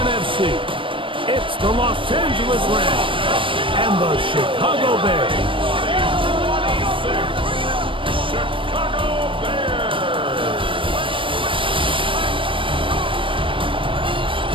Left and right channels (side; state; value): left; late; 0.25 ms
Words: It's the Los Angeles Rams and the Chicago Bears. Chicago Bears.